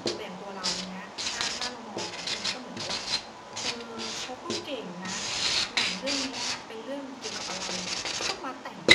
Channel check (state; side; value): identical; both; correlation 1.00